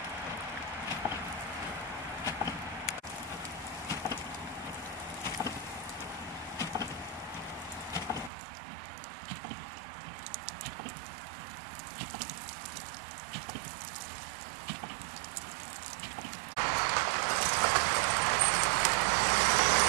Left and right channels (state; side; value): drops out; left; at 8.3 s